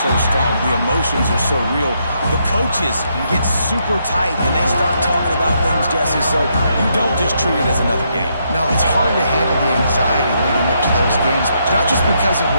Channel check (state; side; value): inverted; both; correlation -0.77